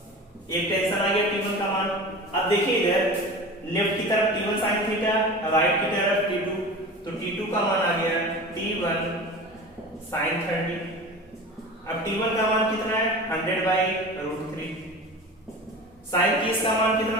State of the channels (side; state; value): both; normal; correlation 0.34